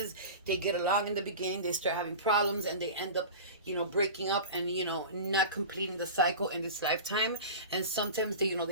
they get along in the beginning, they start having problems, and they end up, you know, breaking up and, you know, not completing the cycle in this lifetime. And sometimes they, you know,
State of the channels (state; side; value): inverted; both; correlation -0.31